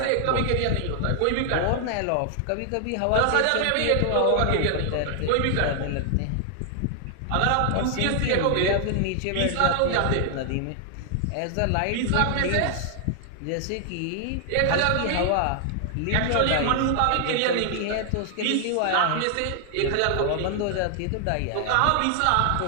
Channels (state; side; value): different; both; correlation 0.00